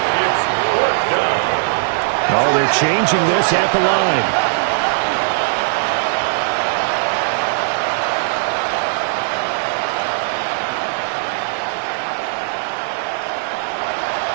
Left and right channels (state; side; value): silent; left; 67 dB below the other